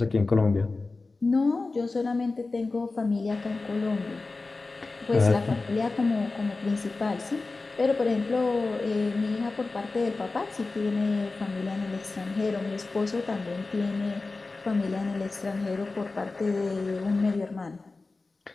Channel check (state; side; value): quieter; right; 3.6 dB